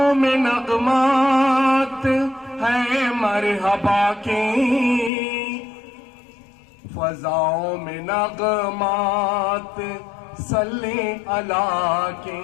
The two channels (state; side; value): drops out; right; at 5.1 s